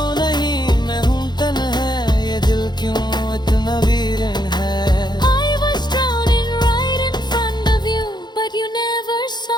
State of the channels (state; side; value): late; right; 0.21 ms